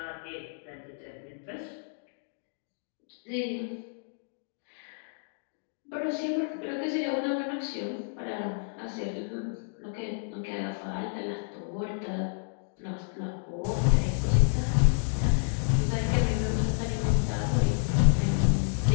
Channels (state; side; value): silent; right; digital silence